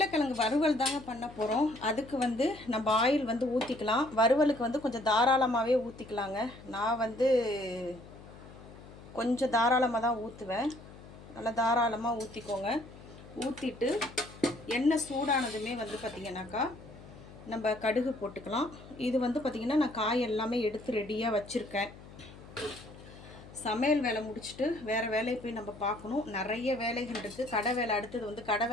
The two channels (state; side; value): noise; left; hum, 18 dB below the sound